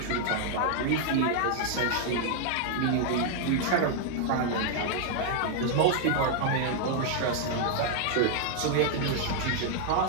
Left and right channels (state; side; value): different; both; correlation 0.00